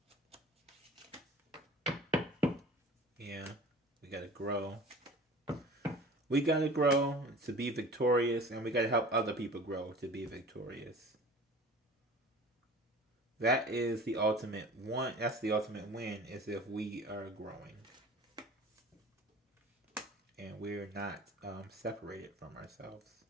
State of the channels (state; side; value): normal; both; correlation 0.42